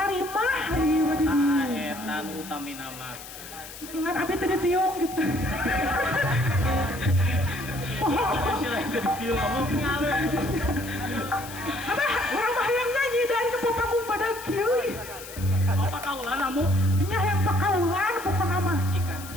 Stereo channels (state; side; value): noise; left; hiss, 14 dB below the sound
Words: ieu mah di Ah, dieu. eta nu utamina mah. Ingat abi teh ditiung gitu. Sila itu ditiung kamu. Abah, urang mah hayang nyanyi dari nu panggung pada kieu. Apa kaulan Amu? Nya hayang pakaulan pokona mah. Cikan.